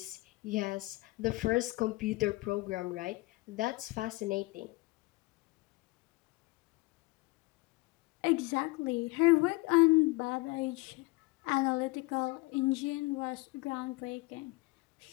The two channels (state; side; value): quieter; right; 23.1 dB